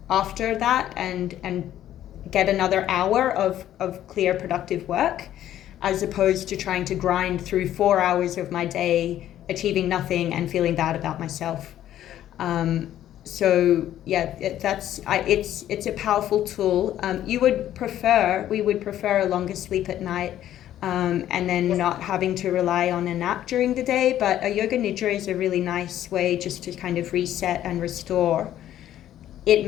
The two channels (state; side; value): quieter; right; 12.0 dB